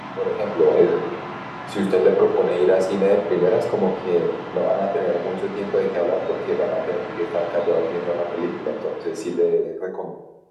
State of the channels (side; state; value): both; identical; correlation 1.00